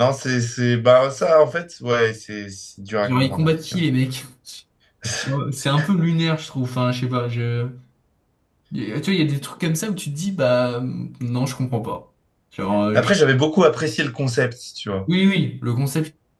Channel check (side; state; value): both; identical; correlation 1.00